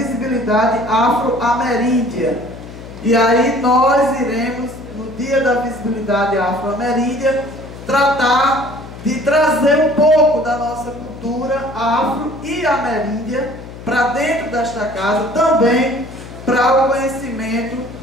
Afro-Ameríndia. E aí nós iremos, no Dia da Visibilidade Afro-Ameríndia, tratar de trazer um pouco da nossa cultura afro e ameríndia para dentro desta casa, também para o conhecimento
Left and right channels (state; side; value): noise; left; hum, 14 dB below the sound